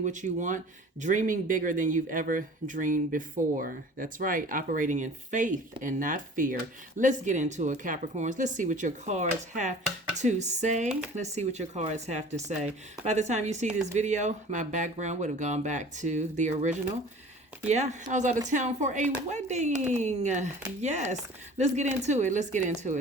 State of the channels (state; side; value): normal; both; correlation 0.44